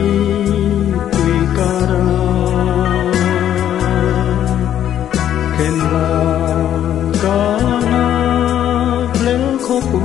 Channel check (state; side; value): quieter; right; 10.7 dB